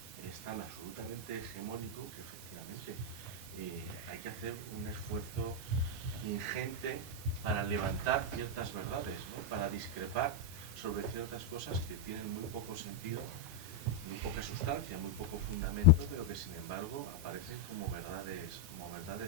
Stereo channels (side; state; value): both; normal; correlation -0.01